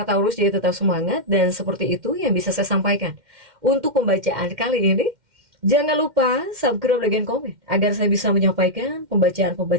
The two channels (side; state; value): left; late; 2.1 ms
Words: Taurus jadi tetap semangat, dan seperti itu yang bisa saya sampaikan untuk pembacaan kali ini. Jangan lupa subscribe, like, dan komen agar saya bisa menyampaikan